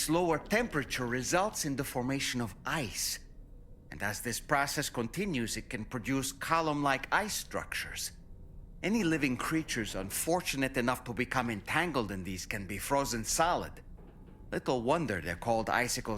lower temperature results in the formation of ice. And as this process continues, it can produce column-like ice structures. Any living creatures unfortunate enough to become entangled in these can be frozen solid. Little wonder they're called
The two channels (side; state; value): both; identical; correlation 1.00